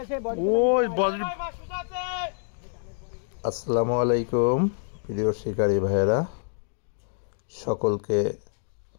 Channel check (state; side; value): silent; right; digital silence